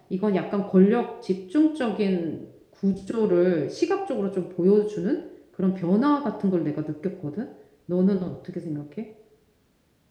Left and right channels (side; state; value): both; identical; correlation 1.00